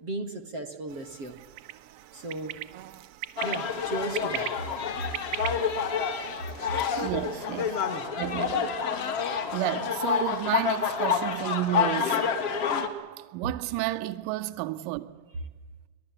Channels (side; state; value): left; late; 7.4 ms